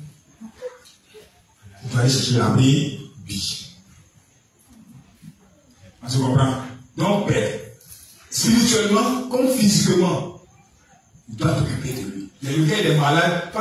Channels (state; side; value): identical; both; correlation 1.00